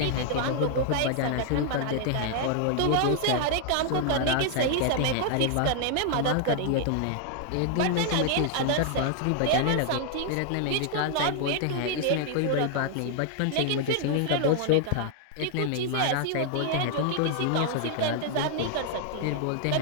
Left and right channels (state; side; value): different; both; correlation 0.00